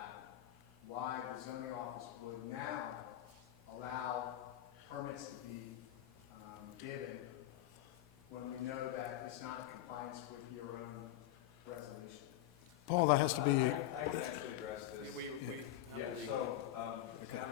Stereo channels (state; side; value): quieter; right; 13.5 dB